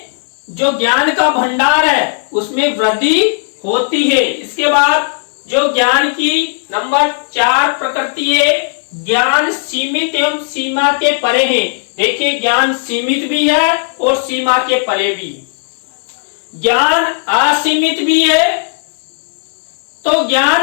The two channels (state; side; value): silent; right; digital silence